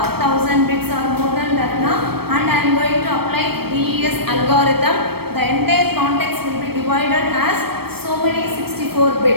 bits or more than that now, and I am going to apply DES algorithm. The entire context will be divided as so many 64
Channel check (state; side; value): late; left; 0.96 ms